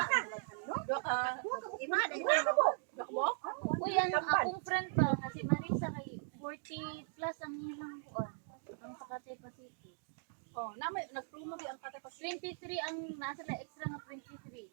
Ima, di Uy, akong friend ba? Kasi Marisa kay 40 plus ang ilang buwan. Ang sa Cathay Pacific. Oh, namay nagpromo di ang kata 23 ang nasa na extra na 23.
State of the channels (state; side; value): silent; left; digital silence